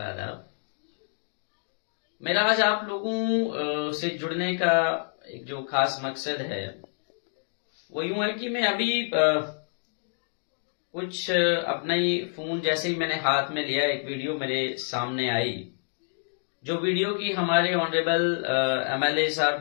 आदाब। मेरा आज आप लोगों से जुड़ने का एक जो खास मकसद है वो यूं है कि मैं अभी कुछ अपना ही फोन जैसे ही मैंने हाथ में लिया, एक वीडियो मेरे सामने आई, जो वीडियो की हमारे ऑनरेबल एमएलए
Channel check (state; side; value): silent; right; digital silence